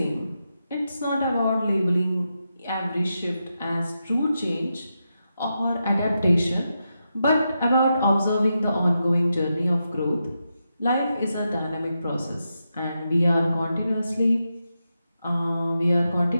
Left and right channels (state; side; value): inverted; both; correlation -0.87